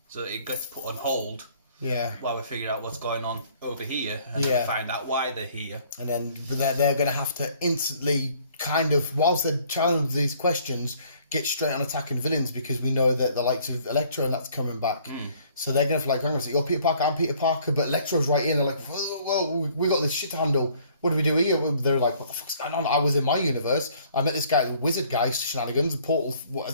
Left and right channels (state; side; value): inverted; both; correlation -0.59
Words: it gets put on hold. Yeah. While we figure out what's going on over here, and then we find out why they're here. And then they're going to have to instantly kind of, whilst they're challenging these questions, get straight on attacking villains because we know that the likes of Electro and that's coming back. So they're going to hang on, you're Peter Parker, I'm Peter Parker, but Electro's right in. They're like, well, we got this shit to handle. What do we do here? They're like, what the fuck's going on? I was in my universe. I met this guy, the wizard guy, shenanigans, the portal